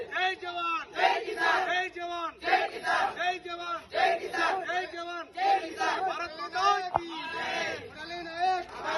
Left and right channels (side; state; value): both; identical; correlation 1.00